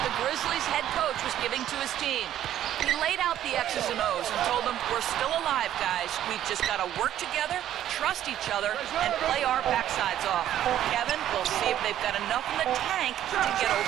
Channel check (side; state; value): left; quieter; 11.7 dB